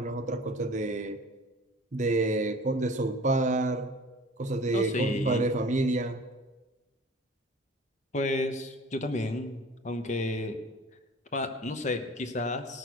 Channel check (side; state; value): both; normal; correlation 0.44